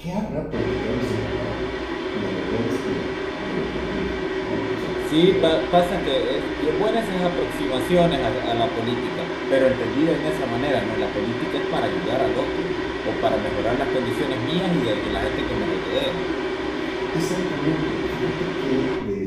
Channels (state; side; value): identical; both; correlation 1.00